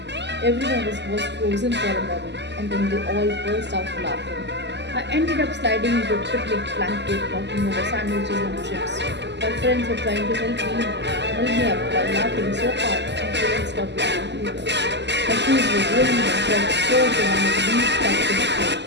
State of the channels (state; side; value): late; left; 0.51 ms